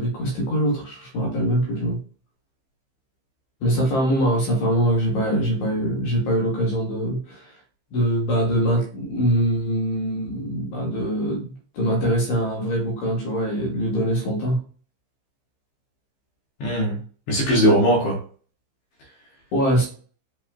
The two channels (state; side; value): late; right; 15 ms